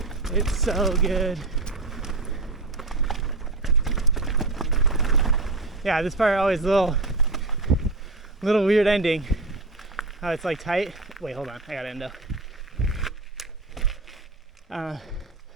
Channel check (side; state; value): left; quieter; 3.3 dB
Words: It's so good. Yeah, this part always a little weird ending. How it's like tight. Wait, hold on. I got endo.